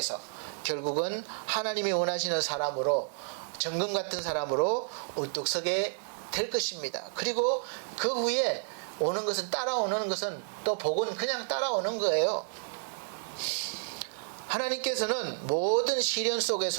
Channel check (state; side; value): silent; left; 57 dB below the other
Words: 결국은 하나님이 원하시는 사람으로, 정금 같은 사람으로 우뚝 서게 될 것입니다. 그리고 그 후에 오는 것은 따라오는 것은 또 복은 그냥 따라오는 거예요. 하나님께서는 모든 시련